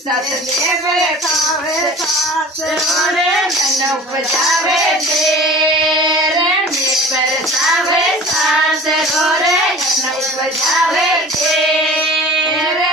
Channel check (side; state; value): both; normal; correlation 0.41